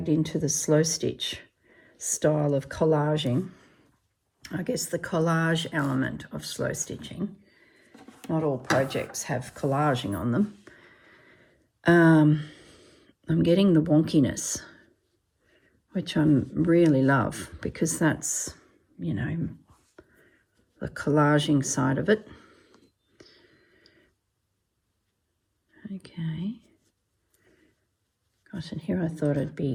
into the slow stitch style of collaging, I guess the collage element of slow stitching, not all projects have collaging on them, I'm getting the wonkiness, which I really love, because that's, you know, the collaging side of it. Okay. Gosh, and here I thought it'd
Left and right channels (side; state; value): both; identical; correlation 1.00